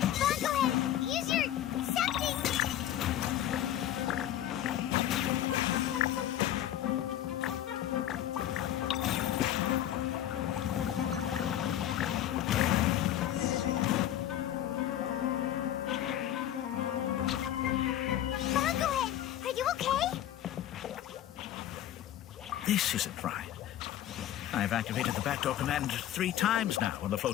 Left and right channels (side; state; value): right; quieter; 11.9 dB